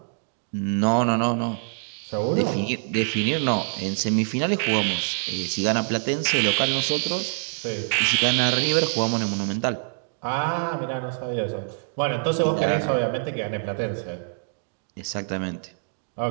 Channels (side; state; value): left; silent; digital silence